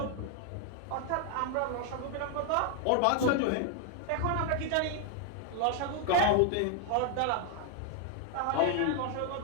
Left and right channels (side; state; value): both; different; correlation 0.00